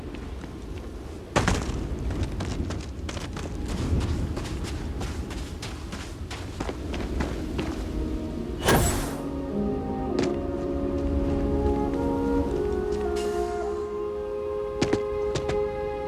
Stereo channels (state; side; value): identical; both; correlation 1.00